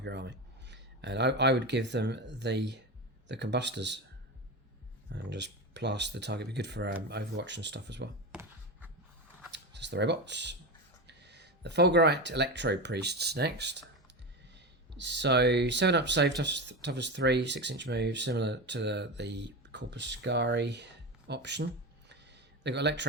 your army. And I would give them the Combustors and just blast the target. Be good for Overwatch and stuff as well. That's the robots. The Fulgurite Electro Priests next. So 7 up save, toughest 3, 6-inch move, similar to the Corpuscari option. They've got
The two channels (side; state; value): both; normal; correlation 0.20